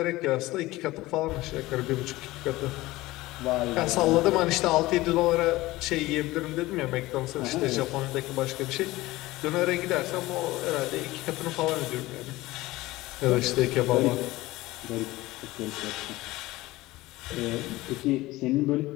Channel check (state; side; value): quieter; right; 18.8 dB